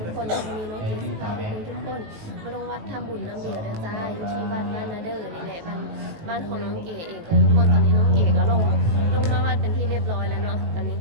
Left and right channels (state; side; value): late; left; 19 ms